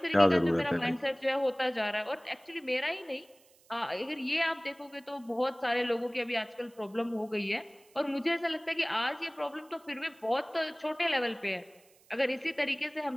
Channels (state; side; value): noise; right; hiss, 29 dB below the sound